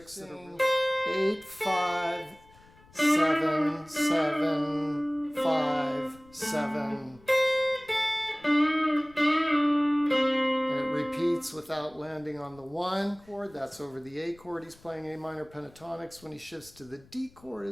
that are 8, 5, 7, 7, 5, 7. And it repeats without landing on the 1 chord. That's over the A chord. He's playing A minor pentatonics. When he shifts to the D chord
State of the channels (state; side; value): noise; left; rumble, 26 dB below the sound